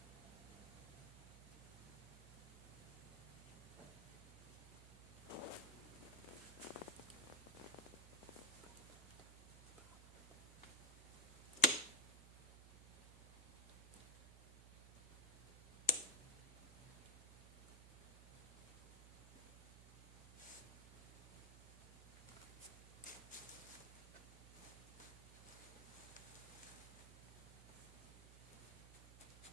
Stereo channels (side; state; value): right; noise; hum, 15 dB below the sound